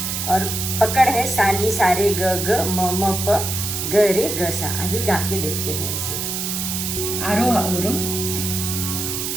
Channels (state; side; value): noise; right; hiss, 3 dB below the sound